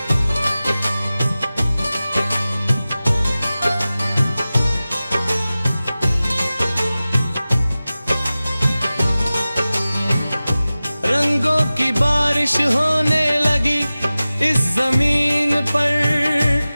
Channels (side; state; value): both; inverted; correlation -0.96